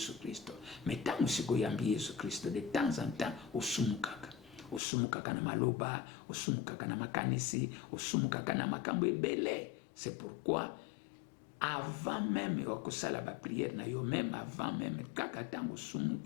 Christo. Mais tango siko yambi Yesu Christo, de temps en temps osumukaka na maloba, osumukaka na makanisi, osumukaka na makambo ebele. C'est pourquoi avant même okosala ba prière na yo, même avant même kaka tango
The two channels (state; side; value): drops out; right; at 4.8 s